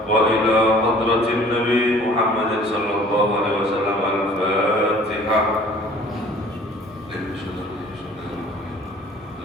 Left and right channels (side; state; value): both; normal; correlation 0.51